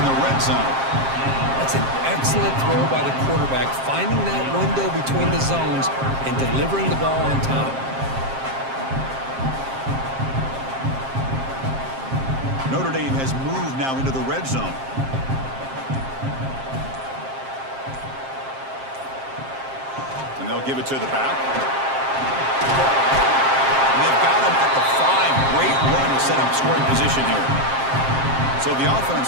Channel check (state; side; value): late; left; 7.5 ms